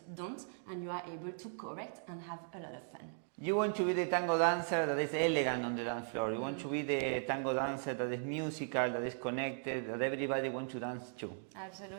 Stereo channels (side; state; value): left; silent; digital silence